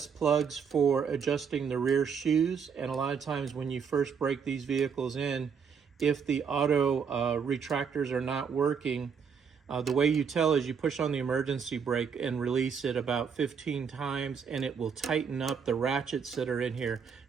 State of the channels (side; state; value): left; quieter; 6.5 dB